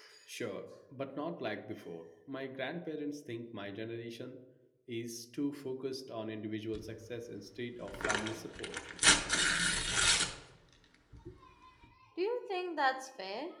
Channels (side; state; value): both; identical; correlation 1.00